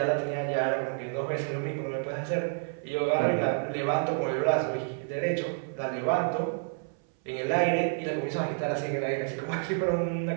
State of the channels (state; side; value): silent; left; 58 dB below the other